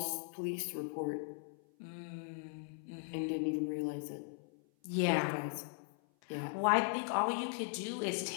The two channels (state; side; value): silent; right; 52 dB below the other